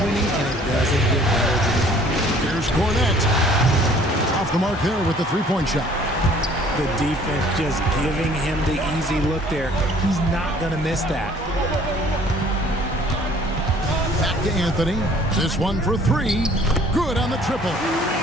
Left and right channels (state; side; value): normal; both; correlation 0.55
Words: and it doesn't get better than that. Here's Cornette. Off the mark there with the three-point shot. The defense just giving him the easy look there. He's not going to miss that. Back to Anthony. This one for three. Good on the triple.